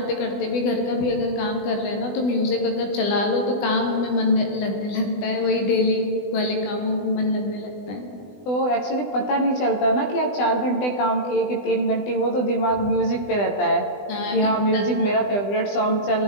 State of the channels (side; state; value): right; late; 20 ms